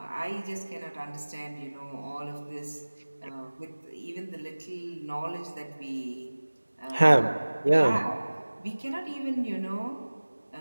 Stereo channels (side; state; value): both; inverted; correlation -1.00